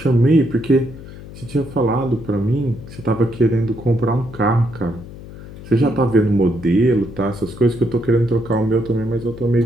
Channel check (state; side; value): noise; left; hum, 15 dB below the sound